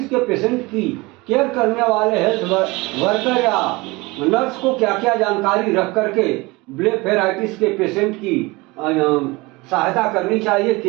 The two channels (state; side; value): quieter; left; 23.4 dB